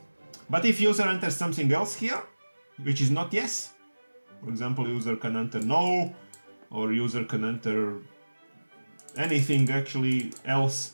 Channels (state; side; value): inverted; both; correlation -1.00